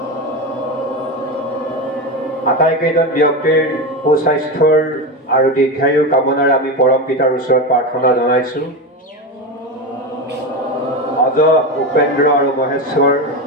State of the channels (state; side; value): normal; both; correlation 0.18